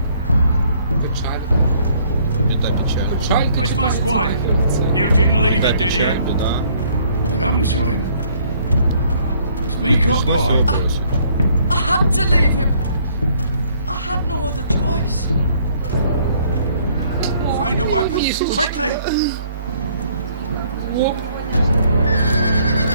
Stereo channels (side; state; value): both; inverted; correlation -0.63